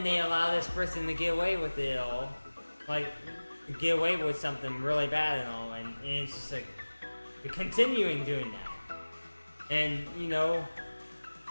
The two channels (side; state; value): both; inverted; correlation -1.00